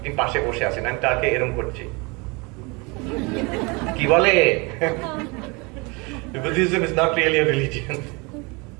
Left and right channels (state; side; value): quieter; left; 28.3 dB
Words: তিনি পাশে বসে আছেন, আমি তাকে এরকম করছি, কি বলে Buddhism is not really a religion.